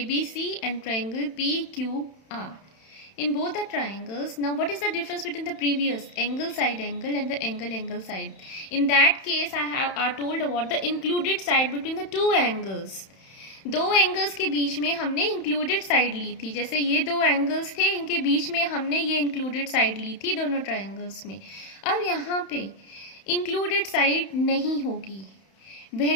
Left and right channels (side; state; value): right; late; 31 ms